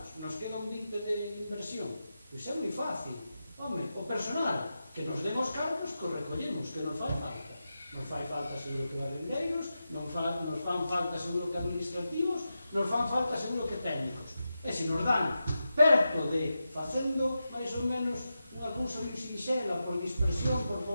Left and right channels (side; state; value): both; inverted; correlation -0.90